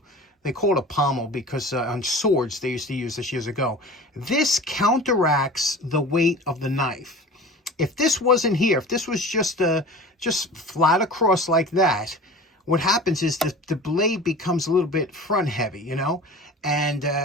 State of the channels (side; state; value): both; normal; correlation 0.38